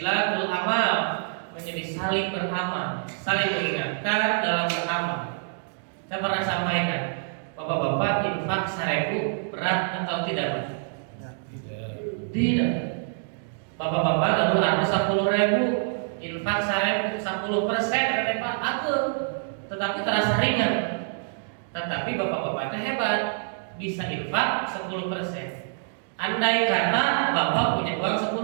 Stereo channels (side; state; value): left; silent; digital silence